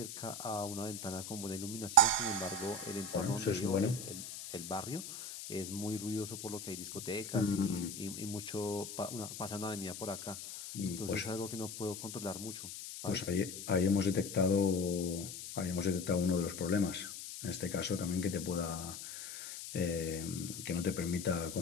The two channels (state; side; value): noise; left; hiss, 9 dB below the sound